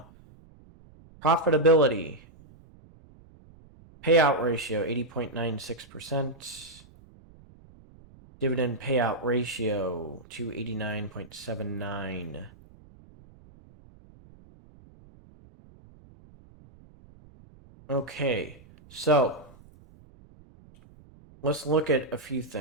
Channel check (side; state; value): right; noise; rumble, 24 dB below the sound